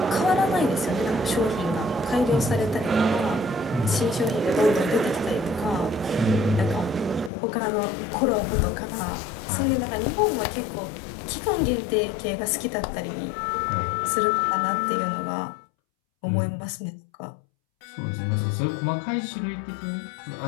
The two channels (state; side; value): drops out; right; at 7.3 s